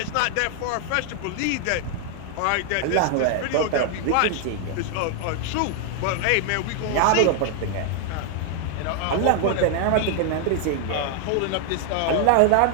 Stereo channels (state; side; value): different; both; correlation 0.00